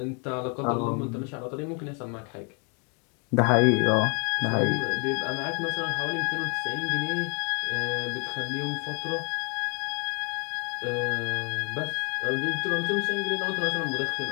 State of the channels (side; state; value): right; quieter; 36.7 dB